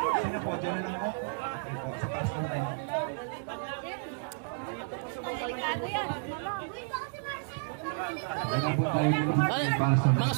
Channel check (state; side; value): silent; left; digital silence